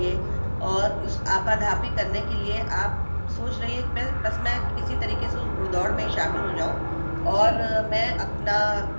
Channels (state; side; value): inverted; both; correlation -1.00